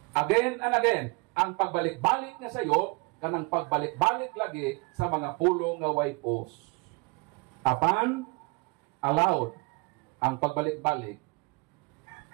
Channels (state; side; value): quieter; left; 28.4 dB